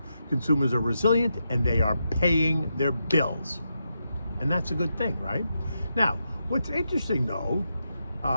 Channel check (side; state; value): both; inverted; correlation -0.85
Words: Consumers are resilient and they are paying their bills. And that's a good thing, right? Now, what's interesting though,